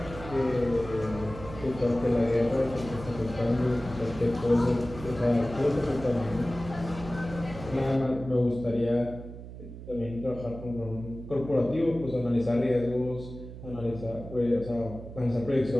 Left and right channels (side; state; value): right; noise; hum, 13 dB below the sound